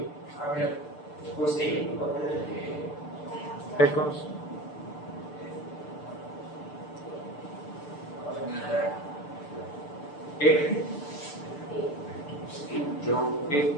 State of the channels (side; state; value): right; late; 6.8 ms